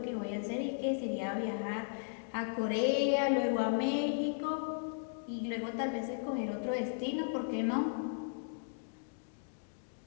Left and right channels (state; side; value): silent; right; digital silence